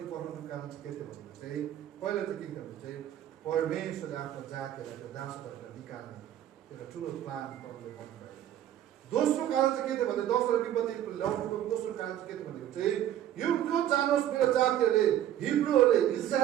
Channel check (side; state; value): left; quieter; 11.6 dB